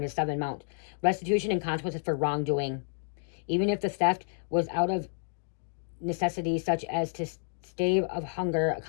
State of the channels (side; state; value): right; silent; digital silence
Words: it's 7 amount. Restitution and consequences for wrongdoing. Even if the theft was out of necessity, such as to stave of hunger,